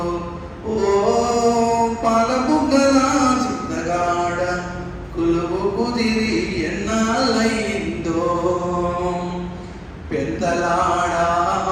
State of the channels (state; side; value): identical; both; correlation 1.00